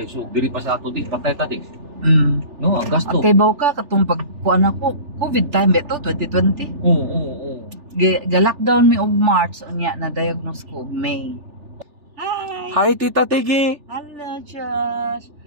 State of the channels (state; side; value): late; left; 3.4 ms